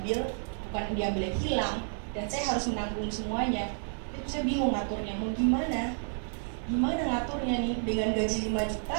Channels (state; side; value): silent; left; 57 dB below the other